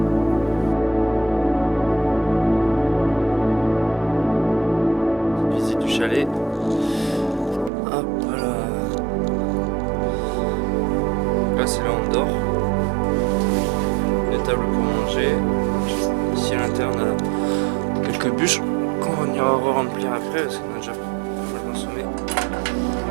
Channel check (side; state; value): left; drops out; at 7.7 s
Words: Chalet. Hop là. Là c'est là où on dort. Des tables pour manger. Ici à l'intérieur on a quelques bûches qu'on ira re-remplir après parce qu'on a déjà pas mal consommé.